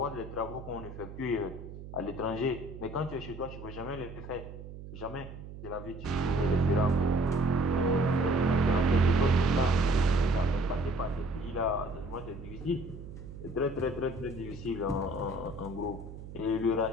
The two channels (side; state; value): right; noise; hum, 13 dB below the sound